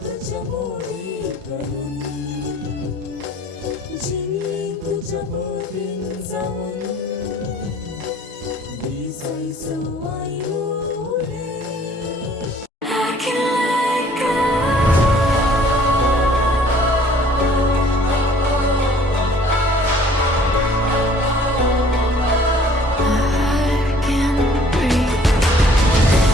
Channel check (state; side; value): normal; both; correlation 0.55